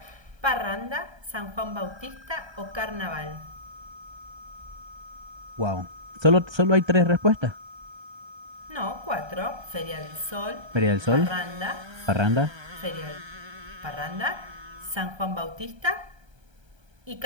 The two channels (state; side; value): late; left; 1.3 ms